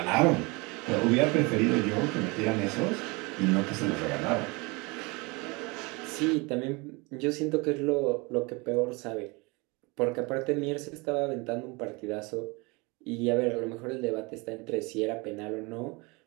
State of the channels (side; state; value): left; quieter; 27.1 dB